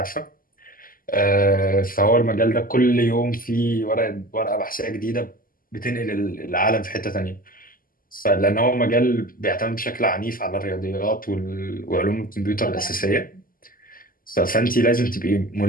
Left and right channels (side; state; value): right; late; 0.41 ms